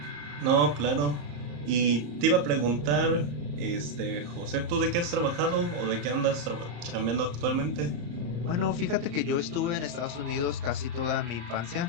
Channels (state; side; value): late; left; 34 ms